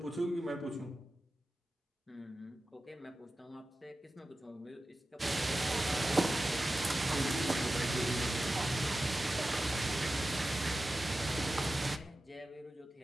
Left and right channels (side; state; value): both; normal; correlation 0.94